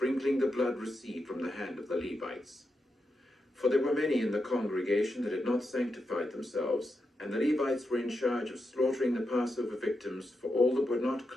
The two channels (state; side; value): normal; both; correlation 0.86